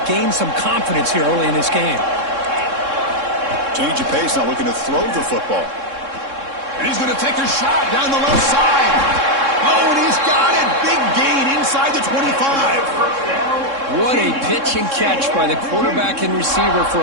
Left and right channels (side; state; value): left; late; 3.6 ms